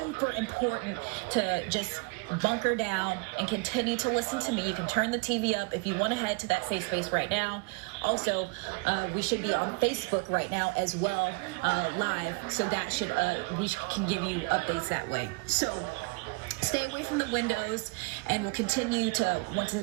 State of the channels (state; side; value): quieter; left; 30.1 dB